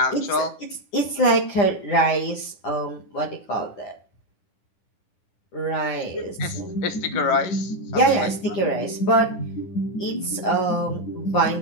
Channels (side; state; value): right; late; 9.9 ms